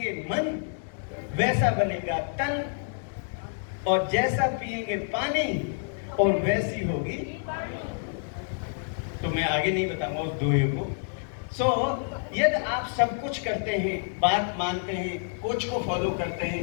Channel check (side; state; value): right; silent; digital silence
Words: मन वैसा बनेगा तन, और जैसा पिएंगे पानी और वैसी होगी, तो मैं आगे नहीं बताऊंगा उस दोहे को। सो यदि आप सब कुछ करते हैं, बात मानते हैं, कोच को फॉलो करते